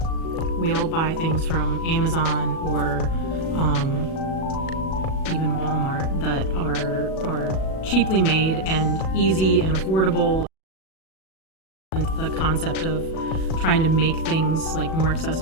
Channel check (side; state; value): right; late; 37 ms